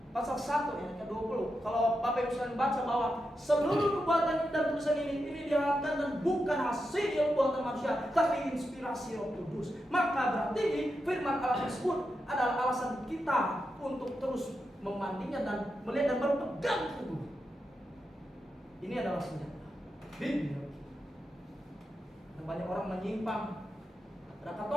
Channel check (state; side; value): normal; both; correlation 0.87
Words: pasal 1 ayat ke-20, kalau Bapak Ibu sekalian baca bahwa seluruh perbuatan dan tulisan ini diharapkan dan bukan hasil buatan manusia, tapi inspirasi Roh Kudus. Maka berarti firman Allah tersebut adalah alasan kita untuk terus memandinya dan melihat dan berpegang teguh. Ini adalah senjata bibliologi. Dan banyak orang menyimpang. Ada